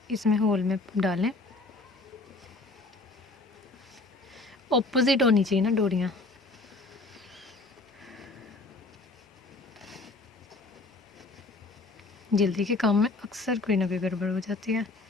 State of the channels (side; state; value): right; quieter; 3.2 dB